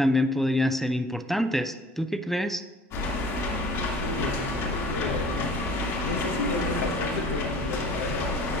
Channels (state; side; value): normal; both; correlation 0.48